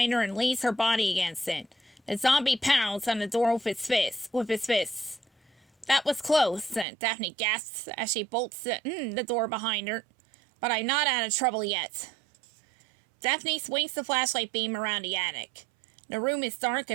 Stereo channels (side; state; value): left; drops out; at 6.9 s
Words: her and leans her body against it. The zombie pounds on the door with his fists. That was close, Daphne gasps as she bolts the door behind her. But I'm not out of trouble yet. Daphne swings the flashlight beam around the attic. The room is dark